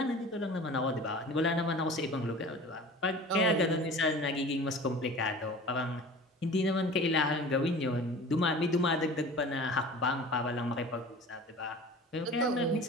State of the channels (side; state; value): both; normal; correlation 0.40